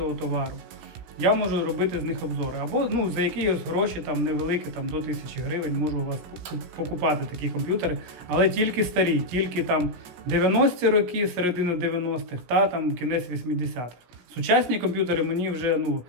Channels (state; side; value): late; left; 16 ms